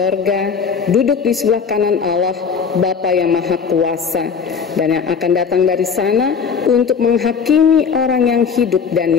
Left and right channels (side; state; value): right; quieter; 6.2 dB